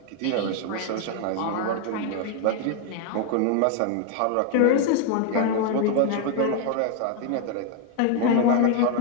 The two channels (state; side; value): different; both; correlation 0.00